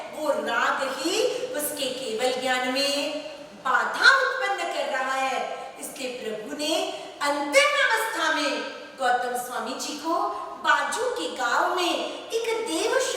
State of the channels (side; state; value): both; identical; correlation 1.00